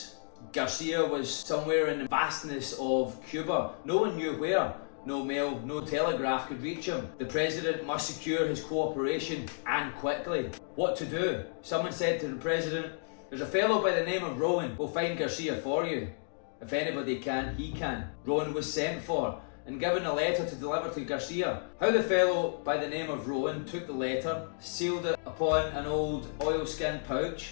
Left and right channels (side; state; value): right; silent; digital silence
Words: Garcia was somewhere in the vastness of Cuba. No one knew where. No mail, no telegraph could reach him. The president must secure his cooperation, and quickly. What to do? Someone said to the president, "There's a fellow by the name of Rowan. We'll find Garcia for you. If anybody can, he can." Rowan was sent for and given a letter to deliver to Garcia. How the fellow by the name of Rowan took the letter, sealed it upon an old oilskin